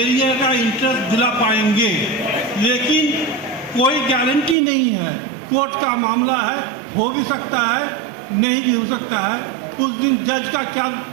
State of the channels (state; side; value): drops out; left; at 4.5 s